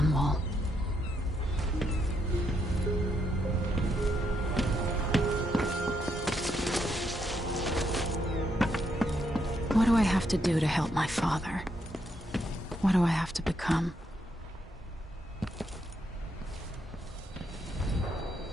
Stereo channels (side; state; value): both; normal; correlation 0.78